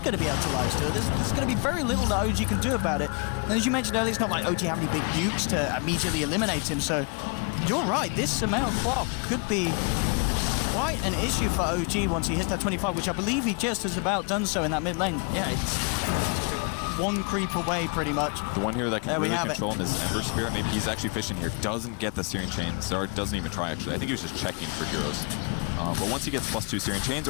going to be able to lifesteal. There's going to be very little that OG can do about it. And as you mentioned earlier, it's not like OG have any big nukes to immediately eliminate him, so you're right. This Sumail quad could be quite an issue for OG once he hits that 25, which I believe he just has about done so in that mid lane. Yeah, it's one creep away pretty much. The one here that can really control him is Ember Spirit. Maybe he's actually fishing here. Doesn't get the Searing Chain. Zard doesn't even try, actually. I think he was just checking for heroes. But once he gets +2 Searing Chains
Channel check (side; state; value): right; quieter; 34.7 dB